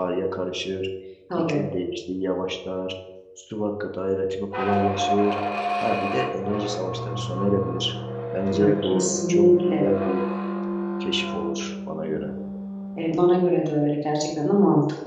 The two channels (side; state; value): both; identical; correlation 1.00